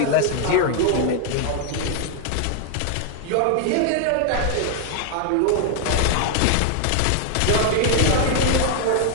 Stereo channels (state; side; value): different; both; correlation 0.00